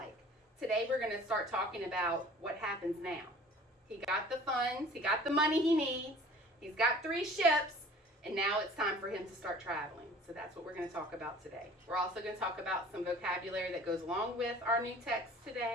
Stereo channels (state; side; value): normal; both; correlation 0.47